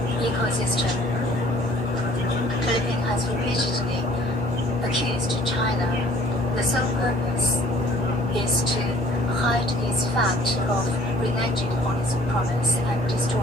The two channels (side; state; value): both; normal; correlation 0.55